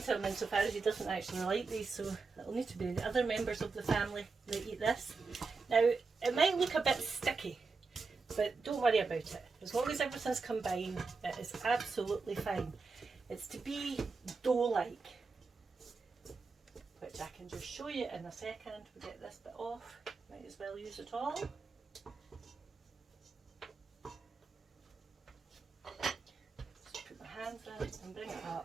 to him insofar as he doesn't actually like these, so it'll need to be the other members of the family that eat this. Now, it might look a bit sticky, but don't worry about it. As long as everything's combined, it is absolutely fine. It's to be dough-like, which I can just show you in a second. We'll get this bit off. Might as well use it all. And bring it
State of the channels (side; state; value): left; quieter; 4.4 dB